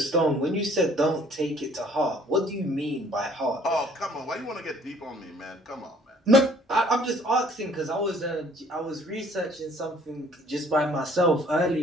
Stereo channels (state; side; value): normal; both; correlation 0.57